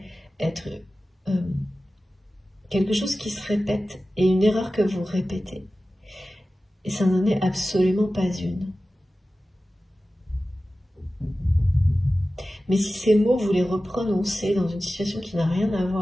être quelque chose qui se répète et une erreur que vous répétez. Et ça n'en est absolument pas une. Mais si ces mots, vous les reprononcez dans une situation qui n'a rien à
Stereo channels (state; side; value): normal; both; correlation 0.95